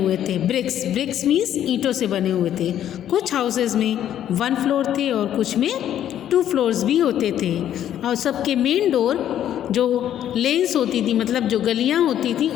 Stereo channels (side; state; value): right; quieter; 10.9 dB